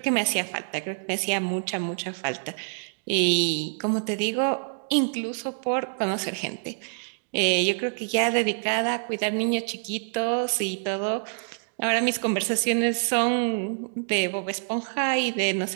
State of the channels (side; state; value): left; silent; digital silence